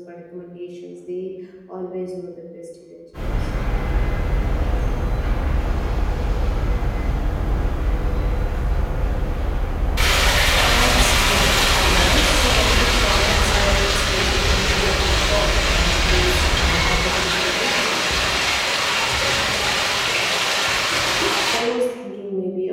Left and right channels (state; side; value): identical; both; correlation 1.00